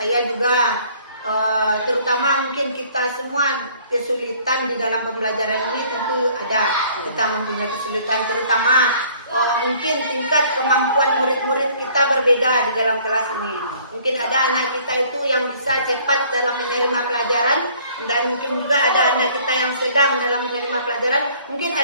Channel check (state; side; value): inverted; both; correlation -0.57